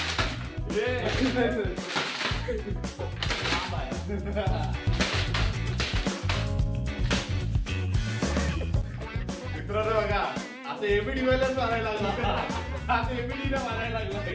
बघा असं एबीडी वेळेलाच मारायला लागला. आता एबीडीला मारायला लागला.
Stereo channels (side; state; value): both; identical; correlation 1.00